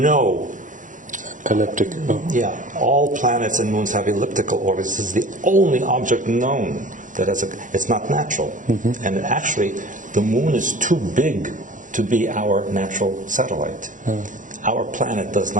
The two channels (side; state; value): left; late; 0.37 ms